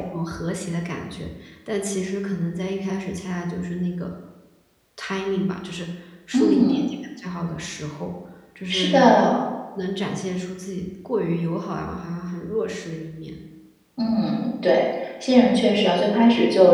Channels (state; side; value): identical; both; correlation 1.00